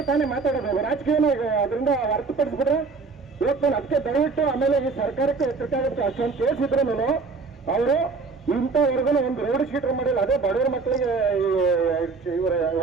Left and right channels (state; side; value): quieter; left; 4.4 dB